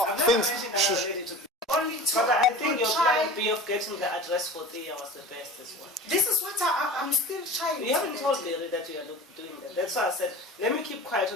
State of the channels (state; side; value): normal; both; correlation 0.37